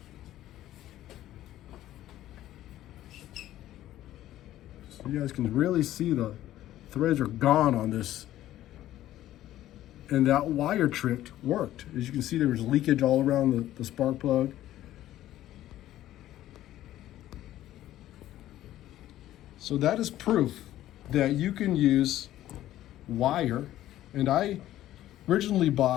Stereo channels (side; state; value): right; quieter; 13.6 dB